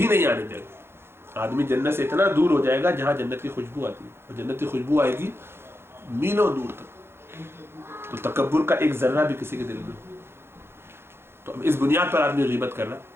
نہیں آنے دے گا۔ آدمی جنت سے اتنا دور ہو جائے گا جہاں جنت کی خوشبو آتی ہے، اور جنت کی خوشبو آئے گی میلوں دور تک۔ تو تکبر کا ایک ذرہ بھی کسی کے دل میں، تو اب اس بنیاد پر آدمی غیبت کر رہا،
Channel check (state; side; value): late; left; 0.12 ms